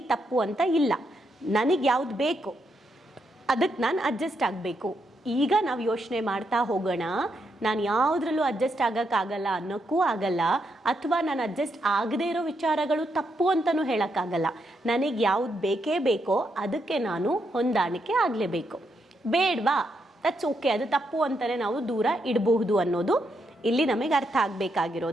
ತಪ್ಪು ಅಂತ ಇಲ್ಲ, ನನಗೆ ಯಾವುದು ಬೇಕು ಅದಕ್ಕೆ ನಾನು ಅಡ್ಜಸ್ಟ್ ಆಗಬೇಕು. ಈಗ ನಾವು ಯೋಚನೆ ಮಾಡ್ತಾ ಹೋಗೋಣ, ನಾನು ಯಾವುದ್ರಲ್ಲೂ ಅಡ್ಜಸ್ಟ್ ಆಗೋಕ್ಕಾಗಲ್ಲ ಅನ್ನೋಕ್ಕೂ ಆಗಲ್ಲ, ಅಥವಾ ನಾನು ಅಡ್ಜಸ್ಟ್ ಆಗದೇ ಇರೋ ವಿಚಾರಗಳು ತಪ್ಪು ಅಂತಲೂ ಹೇಳೋಕ್ಕಾಗಲ್ಲ. ನನಗೆ ಯಾವುದು ಬೇಕೇ ಬೇಕೋ ಅದಕ್ಕೆ ನಾನು ಹೊಂದಾಣಿಕೆ ಆಗಲೇಬೇಕು. ಬೇಡವಾ, ದಟ್ಸ್ ಓಕೆ, ಅದು ತಪ್ಪು ಅಂತಲೇ ನಾವು ದೂರ ಇಡಬಹುದು ಅನ್ನೋದು ಇಲ್ಲಿ ನಮಗೆ ಅರ್ಥ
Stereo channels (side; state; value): both; normal; correlation 0.80